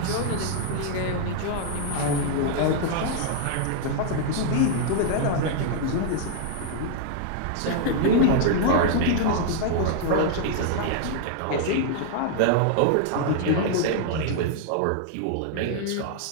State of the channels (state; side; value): different; both; correlation 0.00